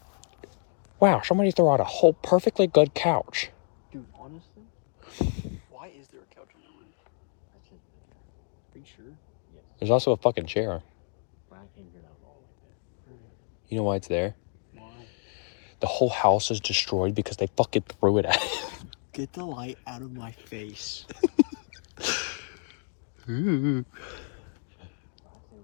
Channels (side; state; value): right; silent; 59 dB below the other